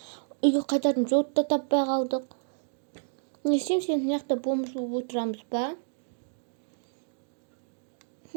Үйге қайтатын жолды таппай қалдық. Не істейміз енді? Мынақты бомж болып отырамыз ба?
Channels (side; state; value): left; silent; digital silence